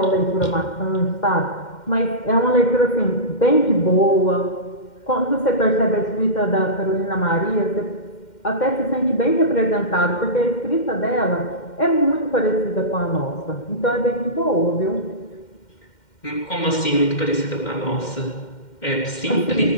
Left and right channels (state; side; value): late; right; 2.1 ms